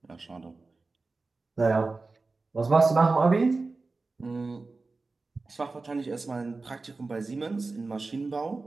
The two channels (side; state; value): left; quieter; 3.7 dB